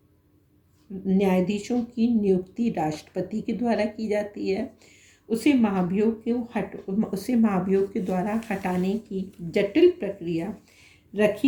न्यायाधीशों की नियुक्ति राष्ट्रपति के द्वारा की जाती है। उसे महाभियोग के द्वारा हटाने की जटिल प्रक्रिया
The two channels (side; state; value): both; identical; correlation 1.00